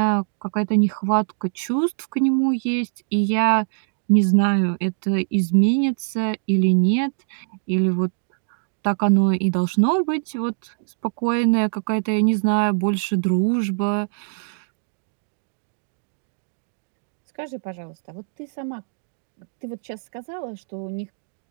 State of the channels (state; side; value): silent; left; 62 dB below the other